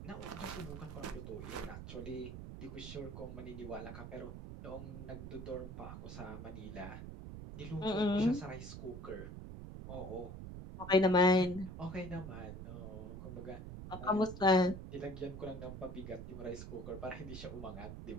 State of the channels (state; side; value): noise; right; rumble, 9 dB below the sound